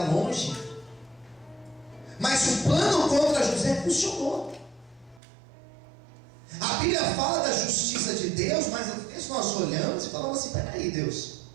longe, mas o plano contra José funcionou. A Bíblia fala da justiça de Deus, mas às vezes nós olhamos e falamos assim: peraí, Deus,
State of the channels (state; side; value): drops out; left; at 5.2 s